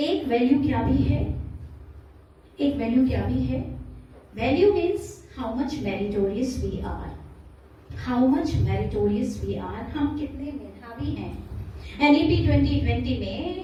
वैल्यू क्या भी है? एक वैल्यू क्या भी है? Value means how much meritorious we are. How much meritorious we are. हम कितने मेधावी हैं. NEP 2020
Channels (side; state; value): both; identical; correlation 1.00